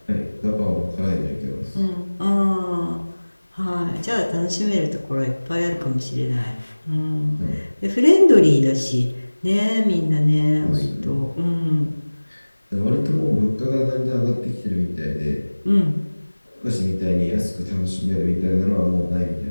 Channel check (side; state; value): both; inverted; correlation -1.00